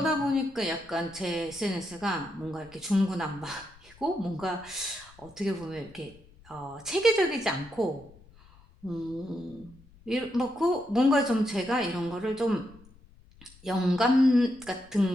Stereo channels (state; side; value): noise; left; rumble, 25 dB below the sound